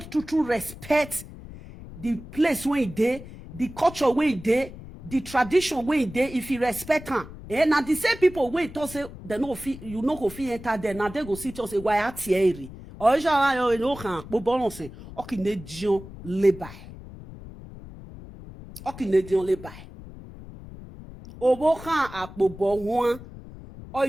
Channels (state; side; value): noise; left; rumble, 15 dB below the sound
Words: respect the place where you there, the culture where you there, the tradition where you there, if you respect her. Now the same people where you say, they no fee, you no go fee enter there, now they go see to say, why are Thierry? Or you know, bo balance, okay, ne dion le bay. Okay, ne dion le bay. Obo kan akpobo huan o